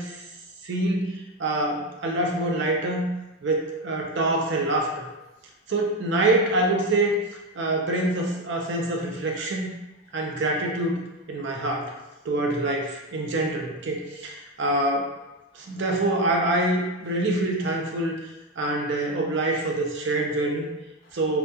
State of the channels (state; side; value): normal; both; correlation 0.13